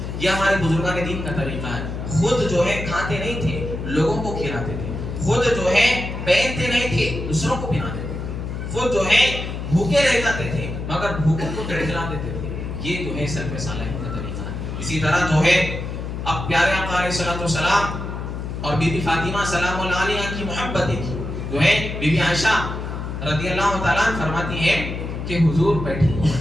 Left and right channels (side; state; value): left; noise; hum, 6 dB below the sound